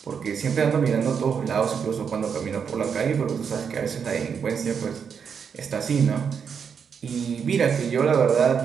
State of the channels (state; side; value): quieter; left; 6.8 dB